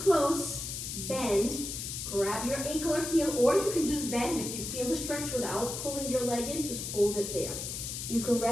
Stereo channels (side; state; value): left; noise; hiss, 5 dB below the sound